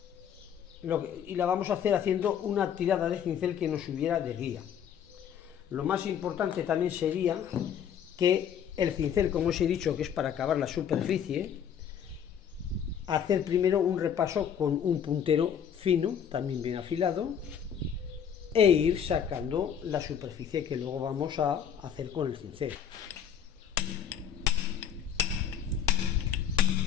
la vamos a hacer haciendo una tirada de cincel que nos sirviera de guía. Lo más importante también sería que el cincel, como os he dicho, que es para acabar la superficie, hacer primero un repaso con un puntero fino, también bien afilado, e ir sacando la superficie que luego vamos a hacer con el cincel.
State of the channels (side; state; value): right; quieter; 8.4 dB